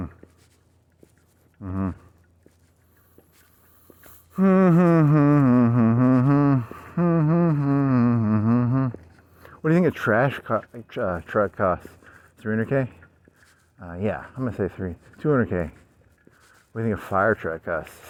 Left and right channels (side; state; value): both; identical; correlation 1.00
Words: What do you think a truck costs? 300K? Yeah, I'm gonna say 200K. What do you think a fire truck costs?